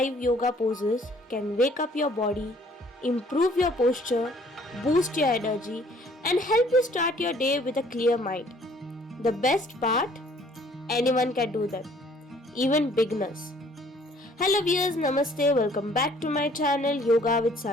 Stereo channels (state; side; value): normal; both; correlation 0.58